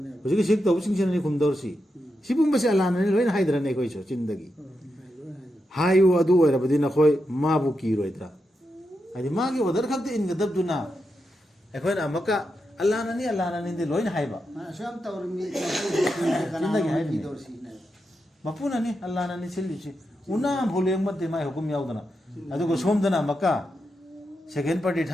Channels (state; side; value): normal; both; correlation 0.86